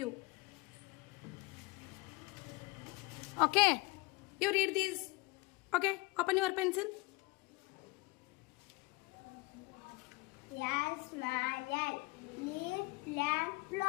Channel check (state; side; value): quieter; right; 23.1 dB